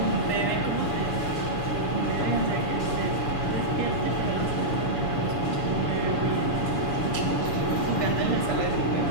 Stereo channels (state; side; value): late; right; 7.0 ms